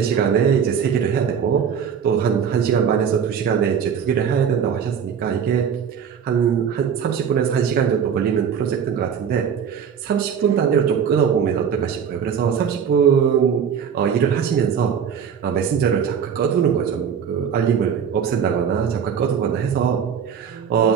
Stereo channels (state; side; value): quieter; left; 7.5 dB